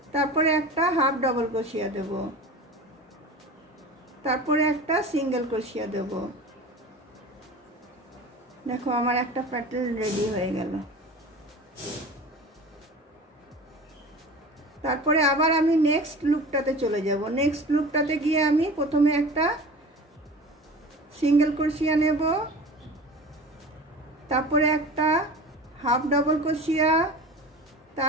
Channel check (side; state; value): both; normal; correlation 0.36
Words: তারপরে একটা হাফ ডাবল ক্রোশিয়া দেব, তারপরে একটা সিঙ্গেল ক্রোশিয়া দেব। দেখো আমার একটা প্যাটার্ন রেডি হয়ে গেল। তারপরে আবার আমি নেক্সট লুপটাতে চলে যাব। নেক্সট লুপটাতে গিয়ে আমি প্রথমে একটা সিঙ্গেল ক্রোশিয়া নেব, তারপরে একটা হাফ ডাবল ক্রোশিয়া,